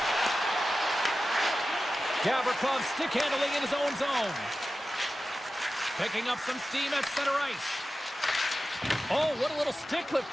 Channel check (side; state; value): both; normal; correlation 0.94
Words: Gavrikov stick handling in his own zone. Picking up some steam at center ice. Oh, what a little stick